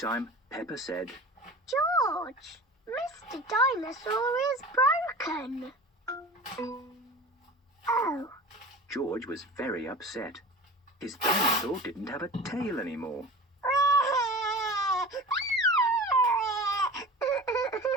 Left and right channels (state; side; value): normal; both; correlation 0.36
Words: Peppa said, George, Mr. Dinosaur is broken. Oh. George was very upset. His dinosaur didn't have a tail anymore.